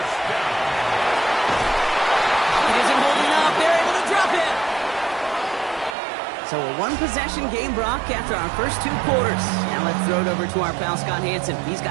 It isn't holding up. They're able to drop it. So a one-possession game, Brock, after our first 2 quarters. Now let's throw it over to our pal Scott Hanson. He's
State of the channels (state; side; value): drops out; left; at 6.0 s